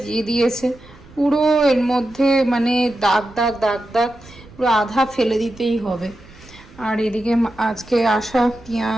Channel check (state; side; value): noise; right; rumble, 22 dB below the sound